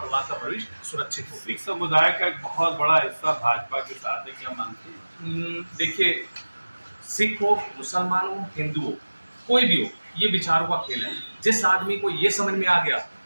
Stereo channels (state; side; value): inverted; both; correlation -1.00